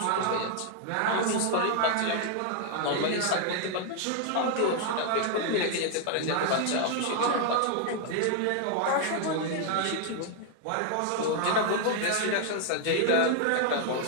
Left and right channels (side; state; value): both; different; correlation 0.00